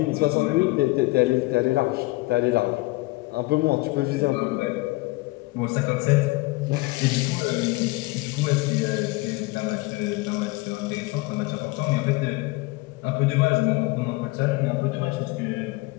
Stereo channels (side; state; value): right; quieter; 22.4 dB